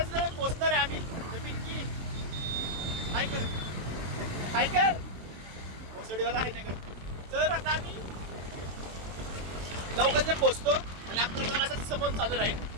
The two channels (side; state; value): left; late; 23 ms